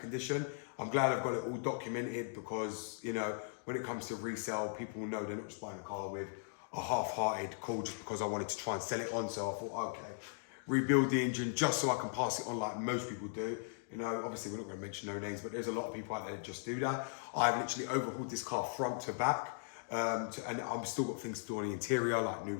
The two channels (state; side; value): silent; right; digital silence